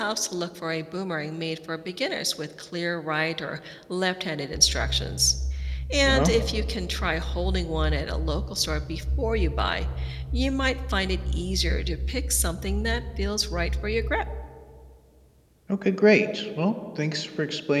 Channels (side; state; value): both; identical; correlation 1.00